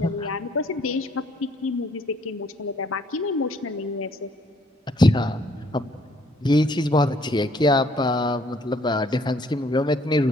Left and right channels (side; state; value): both; normal; correlation 0.64